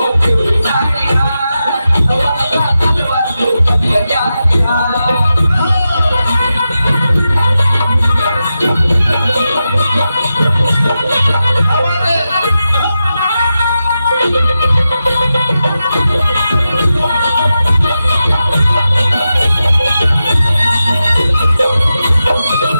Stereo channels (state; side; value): inverted; both; correlation -0.90